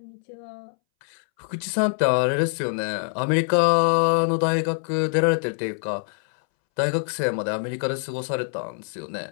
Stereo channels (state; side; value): silent; right; 62 dB below the other